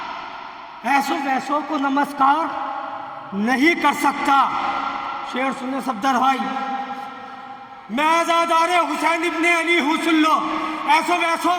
ایسو ویسوں کو نمسکار نہیں کر سکتا۔ شعر سنے صفدر بھائی، میں عزادار حسین ابن علی ہوں، سن لو، ایسو ویسوں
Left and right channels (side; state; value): both; identical; correlation 1.00